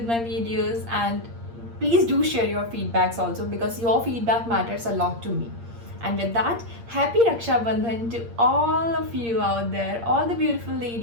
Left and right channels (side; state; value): left; late; 8.6 ms